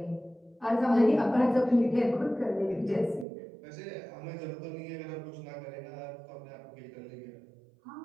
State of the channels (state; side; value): drops out; left; at 3.2 s